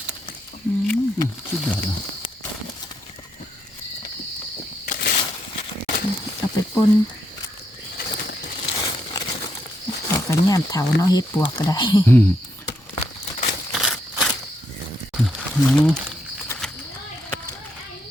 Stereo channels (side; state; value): both; normal; correlation 0.78